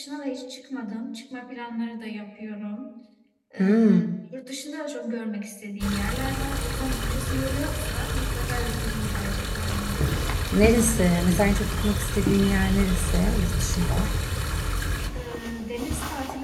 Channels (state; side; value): identical; both; correlation 1.00